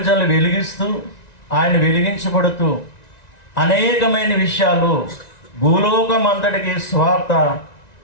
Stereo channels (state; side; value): late; right; 1.9 ms